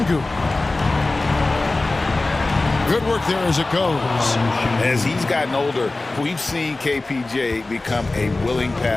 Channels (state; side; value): quieter; right; 3.1 dB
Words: Good work there as it goes. As he's gotten older, we've seen KPJ become a willing